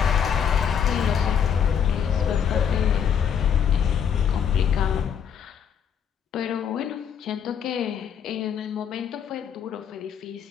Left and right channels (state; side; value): quieter; right; 7.9 dB